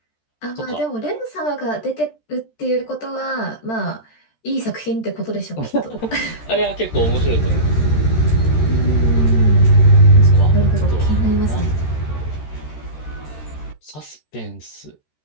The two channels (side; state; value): right; late; 13 ms